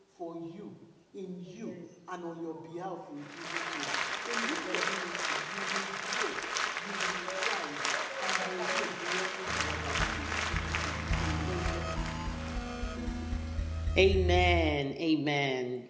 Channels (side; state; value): both; identical; correlation 1.00